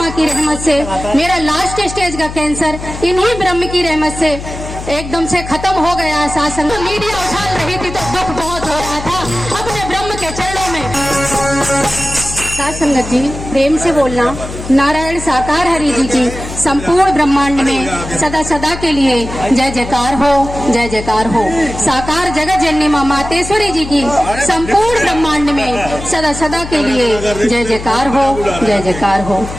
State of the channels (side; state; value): left; noise; hum, 10 dB below the sound